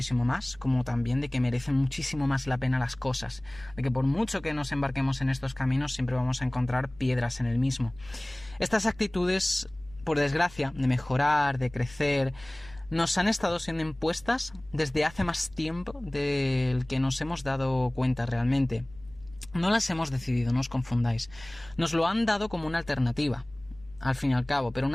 más, como también de que merecen muchísimo más la pena las cosas, de que por mucho que nos embarquemos en estos caminos siempre vamos a encontrar piedras en el mismo. Estas actitudes, por desgracia, de mejorar, de crecer, nos han estado siendo impuestas desde hace más tiempo del que nos hemos dado cuenta realmente. No las hemos decidido, no os confundáis. Nos lo han dado como una alternativa, al fin y al cabo, pero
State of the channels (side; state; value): left; noise; rumble, 22 dB below the sound